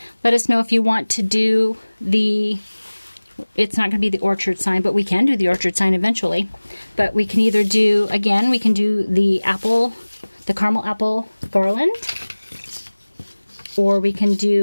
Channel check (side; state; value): both; inverted; correlation -1.00